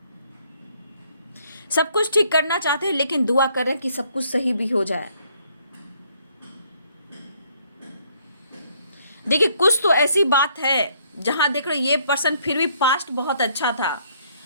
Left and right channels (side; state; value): both; inverted; correlation -0.66